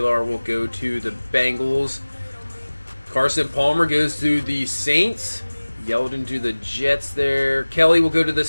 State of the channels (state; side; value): inverted; both; correlation -1.00